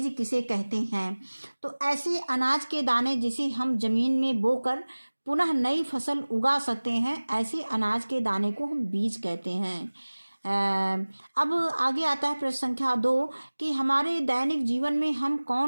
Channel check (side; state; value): both; inverted; correlation -1.00